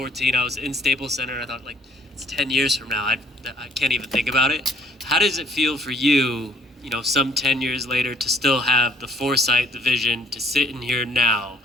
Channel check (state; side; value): normal; both; correlation 0.62